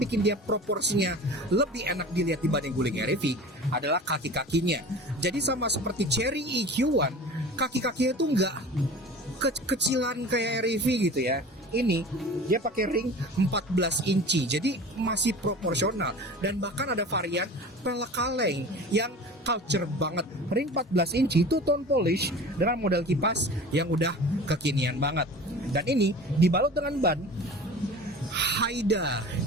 dia proporsinya lebih enak dilihat dibanding guling REV adalah kaki-kakinya. Jadi sama seperti Cherry EQ1, kaki-kakinya itu nggak kecilan kayak REV gitu ya. Ini dia pakai ring 14 inci, jadi masih proporsional. Dan bahkan ada varian pelek kaleng yang culture banget. Ring 14 inci itu tone polish dengan model kipas yang udah kekinian banget. Dan ini dibalut dengan ban Haida.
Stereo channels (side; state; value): both; normal; correlation 0.38